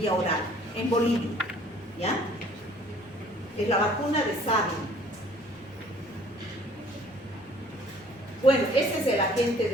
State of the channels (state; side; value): noise; left; rumble, 29 dB below the sound